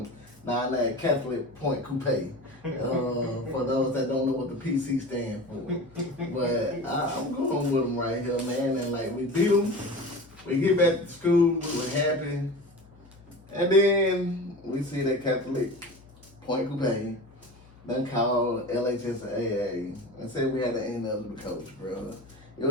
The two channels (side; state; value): left; noise; hum, 25 dB below the sound